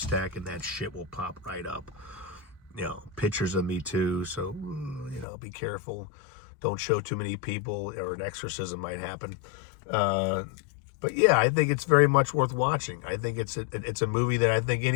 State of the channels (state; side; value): drops out; right; at 5.2 s